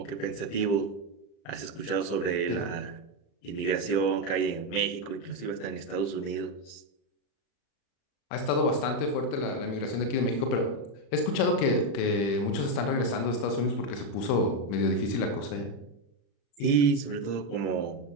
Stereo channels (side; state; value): right; late; 35 ms